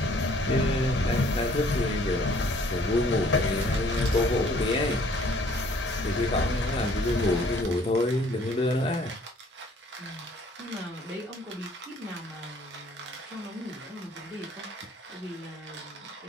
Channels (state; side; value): normal; both; correlation 0.58